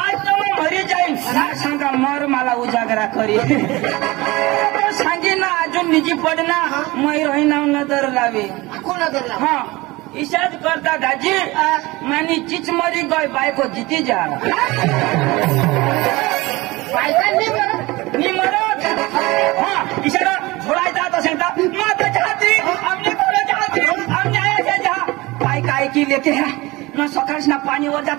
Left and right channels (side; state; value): left; quieter; 21.4 dB